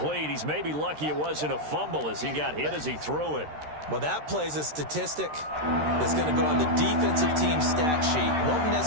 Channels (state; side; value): late; left; 13 ms